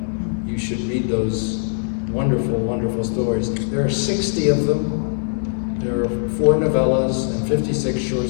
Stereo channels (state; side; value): silent; right; 65 dB below the other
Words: You should read those wonderful, wonderful stories. There are 60 of them. There are 4 novellas and 56 short